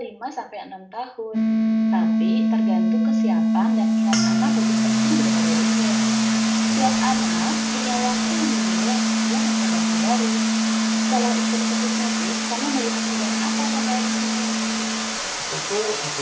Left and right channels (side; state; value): both; identical; correlation 1.00